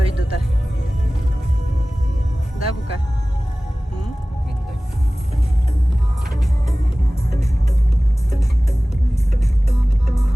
да. Да, Бука?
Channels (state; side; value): normal; both; correlation 0.98